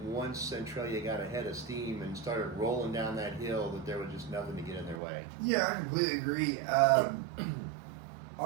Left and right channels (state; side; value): drops out; left; at 5.0 s